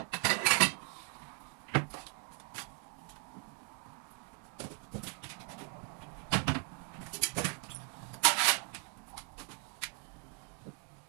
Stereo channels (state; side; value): quieter; left; 36.8 dB